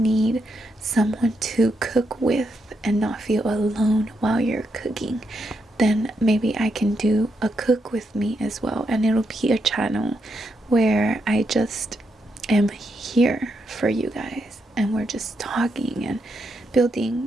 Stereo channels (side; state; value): both; normal; correlation 0.81